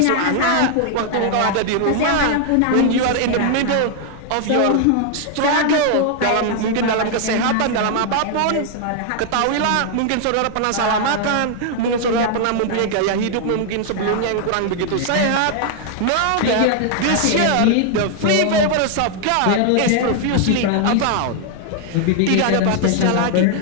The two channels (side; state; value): both; different; correlation 0.00